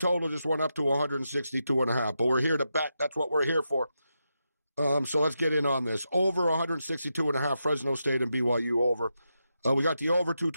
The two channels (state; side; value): inverted; both; correlation -0.86